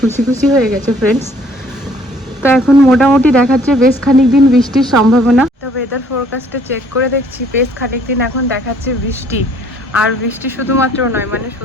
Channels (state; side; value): normal; both; correlation 0.60